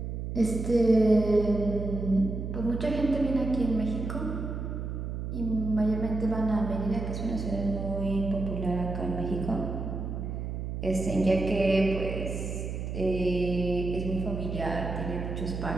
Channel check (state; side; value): noise; right; hum, 5 dB below the sound